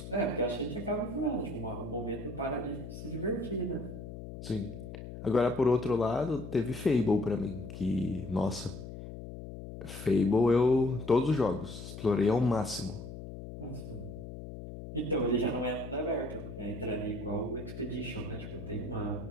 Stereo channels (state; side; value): noise; left; hum, 10 dB below the sound